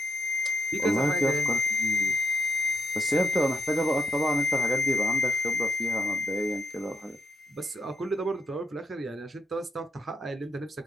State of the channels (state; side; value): normal; both; correlation 0.76